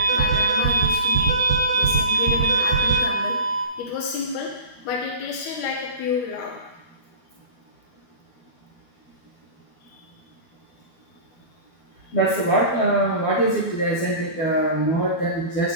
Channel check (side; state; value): right; late; 12 ms